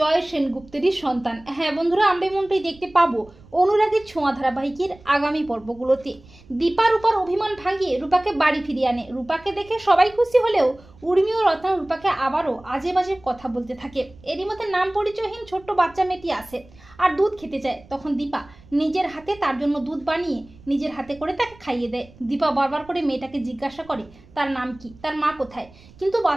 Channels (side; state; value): right; noise; rumble, 24 dB below the sound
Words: সেনগুপ্তেরই সন্তান। হ্যাঁ বন্ধুরা, আমরা এমনটাই দেখতে পাবো অনুরাগের ছোঁয়া ধারাবাহিকের আগামী পর্বগুলোতে। দীপা রূপার অভিমান ভাঙিয়ে রূপাকে বাড়ি ফিরিয়ে আনে। রূপাকে দেখে সবাই খুশি হলেও উর্মি ও রত্না রূপাকে আবারও আজে বাজে কথা বলতে থাকে। এরই মধ্যে নাম পরিচয়হীন ছোট্ট বাচ্চা মেয়েটি আসে আর দুধ খেতে চায়। তখন দীপা নিজের হাতে তার জন্য দুধ বানিয়ে নিজের হাতে করে তাকে খাইয়ে দেয়। দীপা বারবার করে মেয়েটাকে জিজ্ঞাসা করে তার নাম কি, তার মা কোথায়, কিন্তু